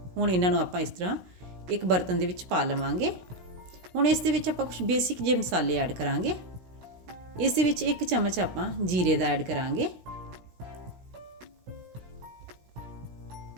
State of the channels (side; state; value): left; late; 17 ms